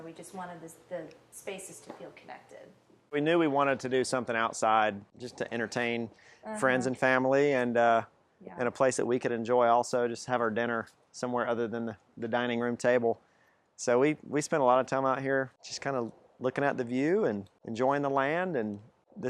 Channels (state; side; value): identical; both; correlation 1.00